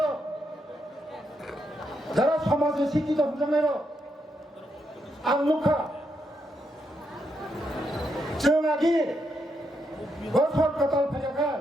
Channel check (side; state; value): both; normal; correlation 0.80